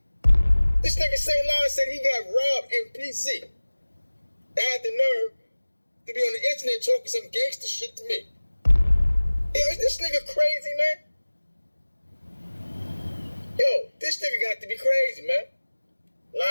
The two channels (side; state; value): both; inverted; correlation -1.00